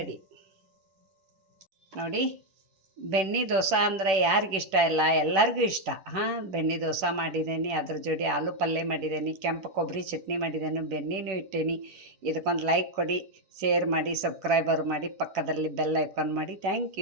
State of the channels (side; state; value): left; late; 10 ms